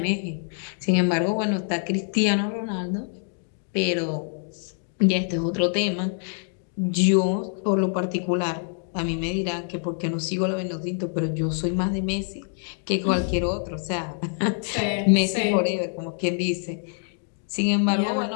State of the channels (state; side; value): silent; right; 59 dB below the other